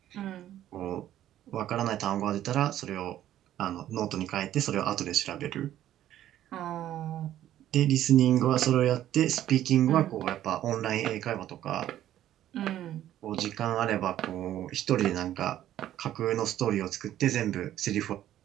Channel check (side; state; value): left; quieter; 12.3 dB